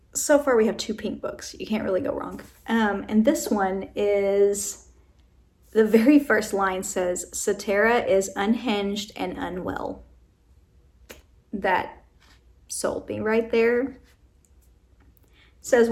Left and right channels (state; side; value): identical; both; correlation 1.00